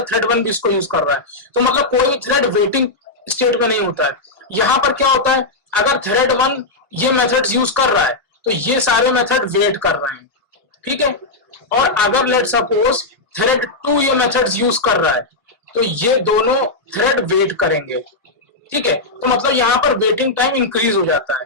थ्रेड 1 भी इसको यूज कर रहा है, तो मतलब कोई भी थ्रेड वेटिंग स्टेट में नहीं होता है। यहाँ पर क्या होता है, अगर थ्रेड 1 ये मेथड्स यूज कर रहा है तो ये सारे मेथड वेट कर रहे हैं, ठीक है। और अगर लेट सपोज थ्रेड 2 ये मेथड्स यूज कर रहा है तो ये दोनों थ्रेड वेट करेंगे, ठीक है। तो मतलब यहाँ पर वेटिंग टाइम इंक्रीज हो जाता है।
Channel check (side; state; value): right; quieter; 3.2 dB